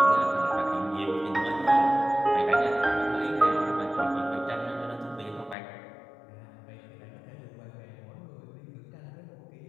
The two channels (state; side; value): drops out; right; at 5.6 s